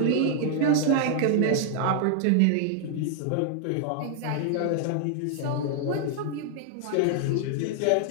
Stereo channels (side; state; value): both; different; correlation 0.00